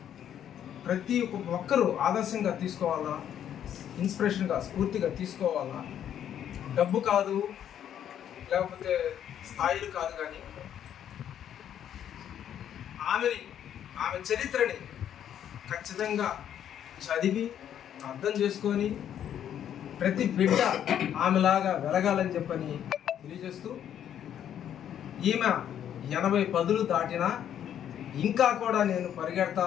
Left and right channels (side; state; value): right; quieter; 9.9 dB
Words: ప్రతి ఒక్కరూ ఆదర్శంగా తీసుకోవాలా, ఇన్స్పిరేషన్గా స్ఫూర్తిగా తీసుకోవాలా. డబ్బు కాదు, లేకపోతే స్థాయిలు కాదు, కానీ ఆమె చరిత్రని ఖచ్చితంగా చదివి అర్థం చేసుకొని ప్రతి బిడ్డ ఆమెలాగా వెలగాలని చెప్పని తెలియజేస్తూ, ఈమె 80 పదులు దాటినా ఇంకా కూడా నేను